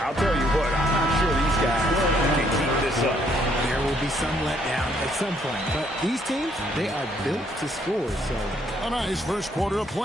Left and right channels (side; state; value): both; normal; correlation 0.68